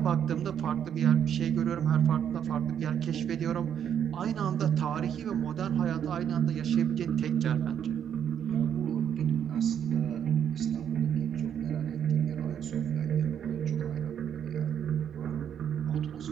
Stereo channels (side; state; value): left; quieter; 8.9 dB